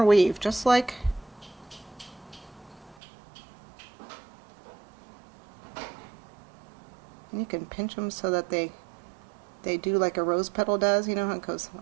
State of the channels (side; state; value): left; drops out; at 3.0 s